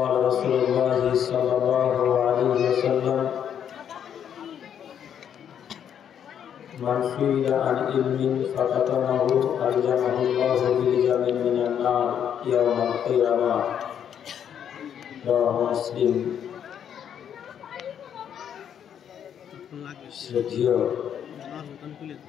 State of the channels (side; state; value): right; quieter; 8.9 dB